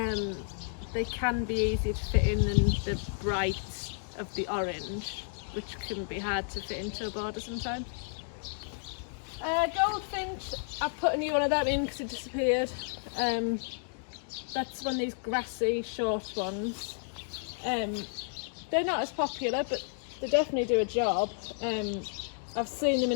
can be easier to fit in than the bright of the orange, which can be hard to fit into a border sometimes. Goldfinch, I've put a new one of them in because it disappeared. That's one of these grassy short ones. They're not as popular, but they definitely do a job. I've seen them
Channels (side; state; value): right; silent; digital silence